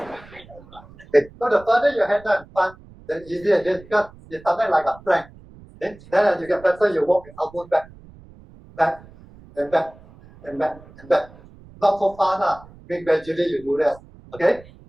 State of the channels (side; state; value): right; noise; rumble, 22 dB below the sound